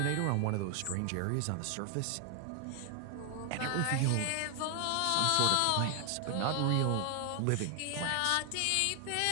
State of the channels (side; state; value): both; different; correlation 0.00